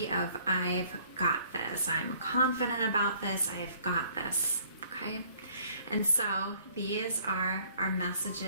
of, I've got this. I'm confident about this. I've got this. Okay? And so these are our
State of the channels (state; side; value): inverted; both; correlation -0.59